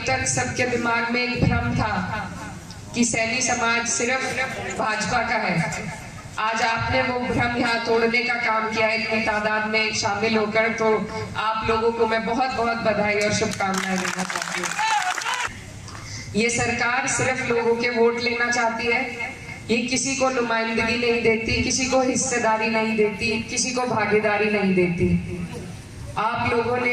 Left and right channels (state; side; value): identical; both; correlation 1.00